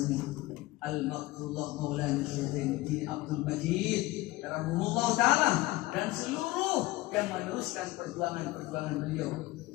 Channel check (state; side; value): quieter; right; 19.4 dB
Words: Al-Maqtullah Maulana Syaikhul Abdul Majid Rahimahullah Ta'ala, dan seluruh yang meneruskan perjuangan beliau